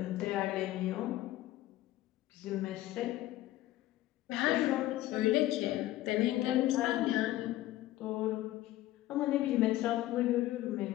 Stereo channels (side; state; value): right; quieter; 15.5 dB